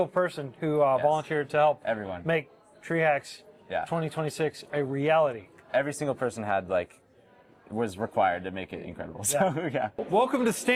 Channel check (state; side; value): identical; both; correlation 1.00